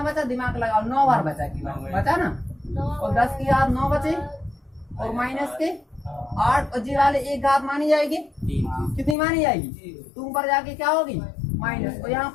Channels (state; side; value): drops out; right; at 9.2 s